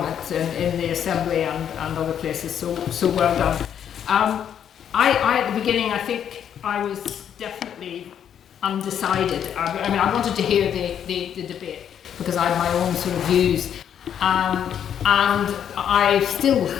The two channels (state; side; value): quieter; right; 9.0 dB